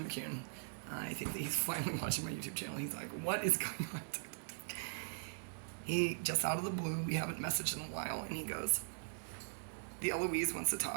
McCune. I think that he's finally watching my YouTube channel. He's like, what is going on? He, just out of the blue, we haven't messaged in a while, and he goes, the Eloise wants to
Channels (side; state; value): left; silent; 51 dB below the other